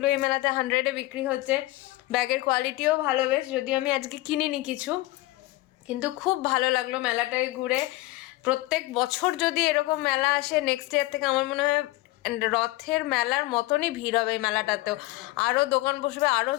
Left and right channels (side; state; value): right; quieter; 19.2 dB